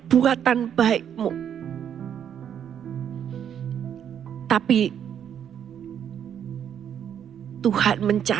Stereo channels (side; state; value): left; quieter; 9.0 dB